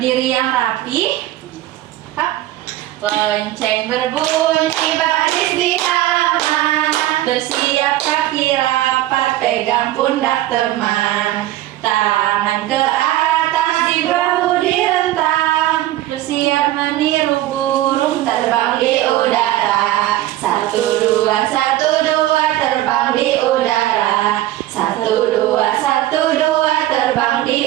yang rapi. Hap. Lonceng berbunyi baris di halaman. Bersiap kaki rapat, pegang pundak teman. Tangan ke atas, di bahu direntang. Bersiap meniru burung terbang di udara. 1, 2, 1, 2 terbang di udara. 1, 2, 1, 2 terbang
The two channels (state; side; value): quieter; left; 14.8 dB